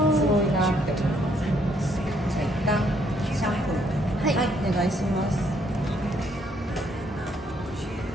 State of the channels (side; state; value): both; normal; correlation 0.69